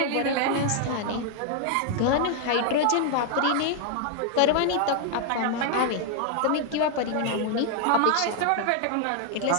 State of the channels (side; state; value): both; different; correlation 0.00